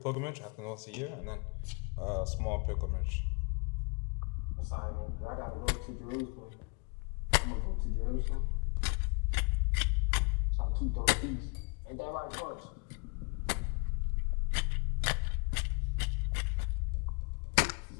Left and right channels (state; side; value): quieter; right; 34.6 dB